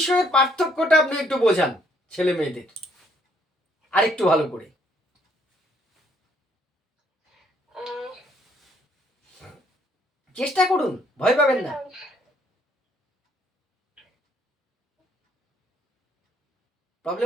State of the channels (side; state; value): both; normal; correlation 0.67